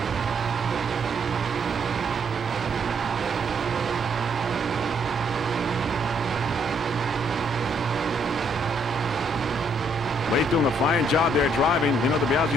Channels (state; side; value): normal; both; correlation 0.70